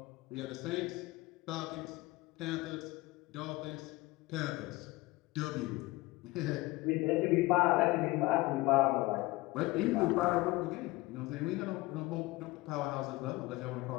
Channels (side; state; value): right; quieter; 20.6 dB